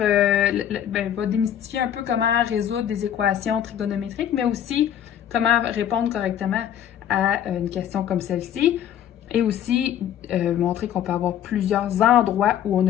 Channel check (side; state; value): right; quieter; 10.2 dB